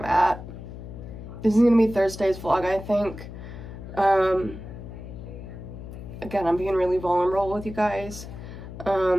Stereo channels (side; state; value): left; noise; hum, 12 dB below the sound